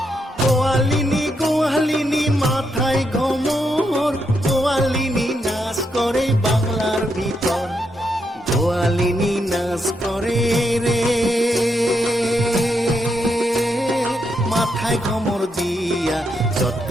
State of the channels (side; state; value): both; normal; correlation 0.80